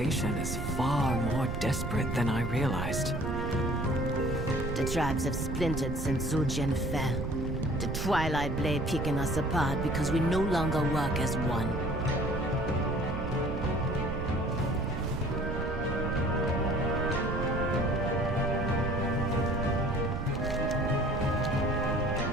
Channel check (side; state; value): right; noise; rumble, 3 dB below the sound